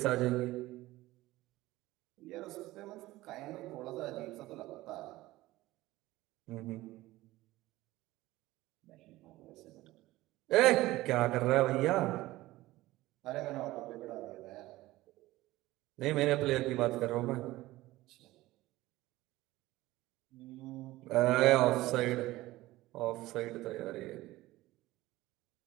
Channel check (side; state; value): left; quieter; 17.7 dB